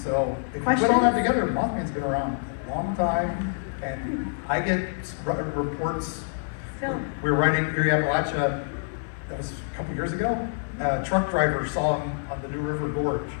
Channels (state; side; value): silent; right; digital silence